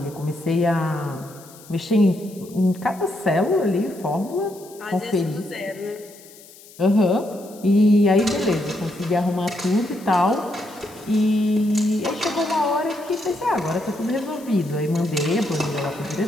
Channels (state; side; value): noise; left; hiss, 22 dB below the sound